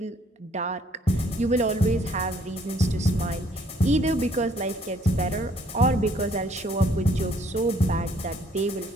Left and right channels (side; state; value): both; normal; correlation 0.63